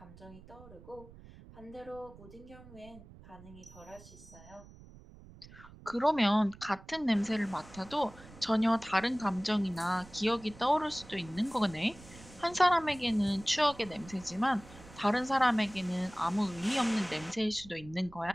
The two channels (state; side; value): noise; right; rumble, 20 dB below the sound